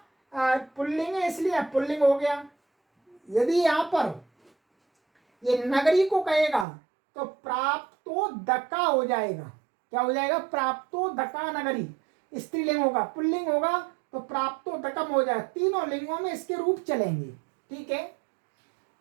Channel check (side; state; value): left; drops out; at 6.7 s